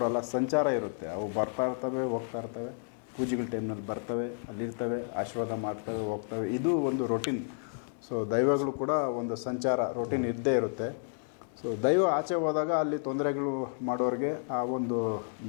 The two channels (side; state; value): right; silent; 57 dB below the other